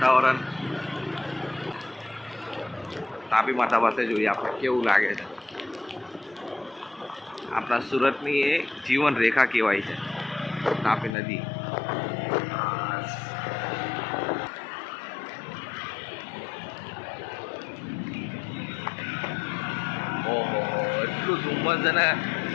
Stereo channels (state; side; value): drops out; right; at 11.1 s